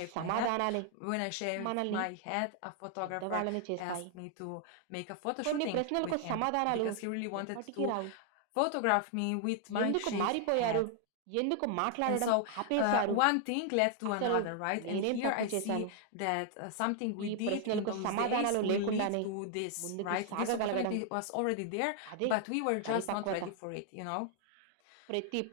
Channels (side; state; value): both; different; correlation 0.00